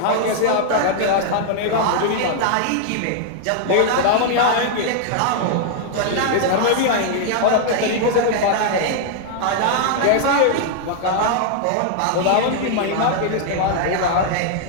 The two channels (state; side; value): different; both; correlation -0.01